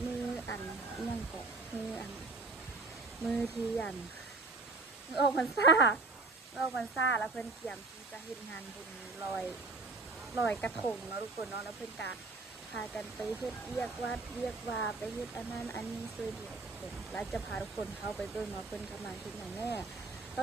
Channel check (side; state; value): left; quieter; 3.6 dB